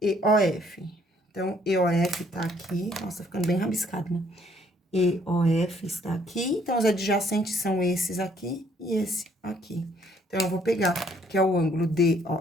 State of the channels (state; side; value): normal; both; correlation 0.64